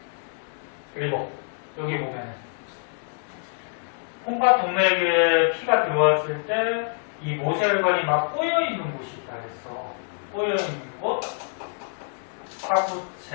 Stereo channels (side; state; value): right; silent; digital silence